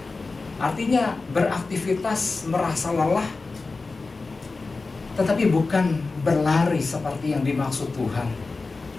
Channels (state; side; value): quieter; right; 3.8 dB